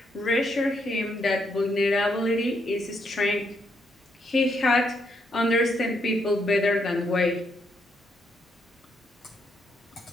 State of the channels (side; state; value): both; normal; correlation 0.76